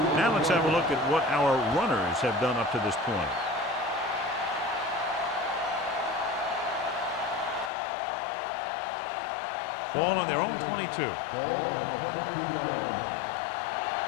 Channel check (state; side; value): drops out; right; at 7.7 s